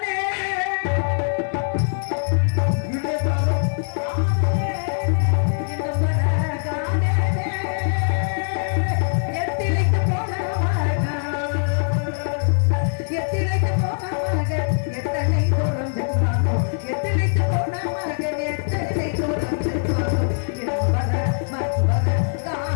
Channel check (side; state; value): right; silent; 62 dB below the other